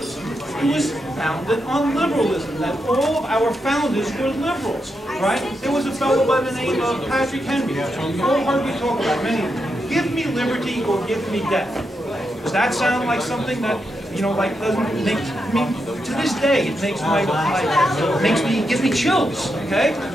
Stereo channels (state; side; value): normal; both; correlation 0.84